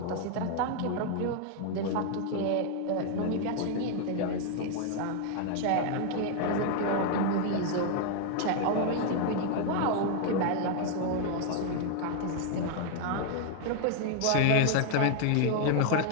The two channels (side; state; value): both; different; correlation 0.00